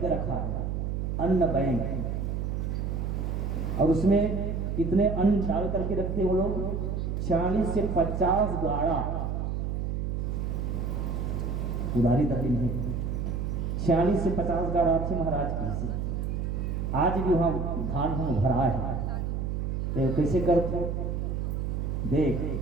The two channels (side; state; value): right; noise; hum, 1 dB below the sound